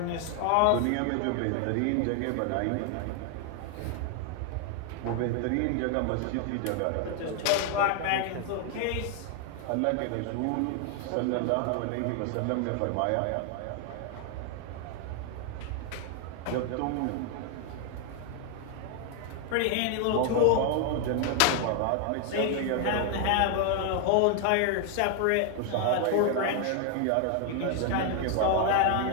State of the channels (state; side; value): different; both; correlation 0.00